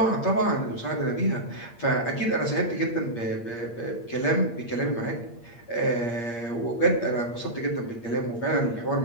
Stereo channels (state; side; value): late; right; 8.6 ms